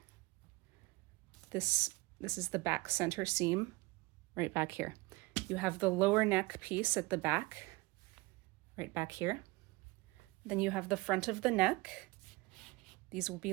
This is the back center seam right back here. You have the lower neck piece at the back, right back here. Then you have the front of the neck. These will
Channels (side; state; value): left; quieter; 22.5 dB